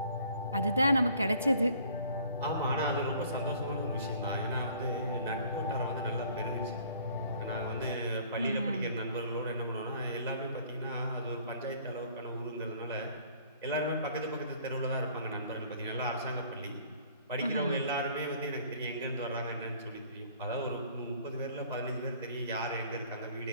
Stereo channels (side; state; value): both; inverted; correlation -0.55